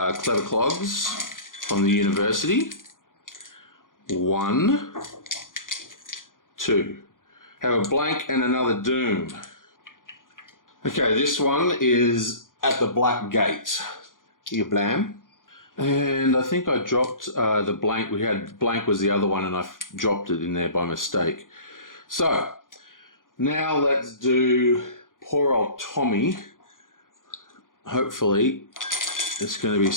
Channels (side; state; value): right; late; 0.89 ms